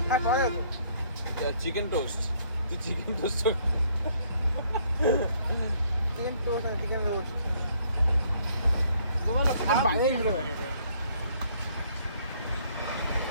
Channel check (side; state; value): both; inverted; correlation -0.64